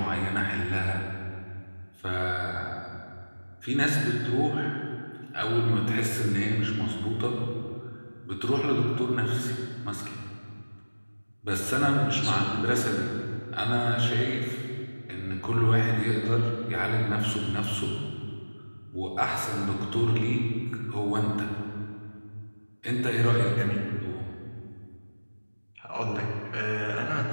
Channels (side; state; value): both; inverted; correlation -1.00